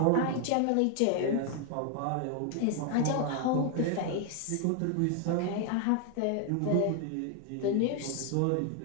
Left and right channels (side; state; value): both; different; correlation 0.00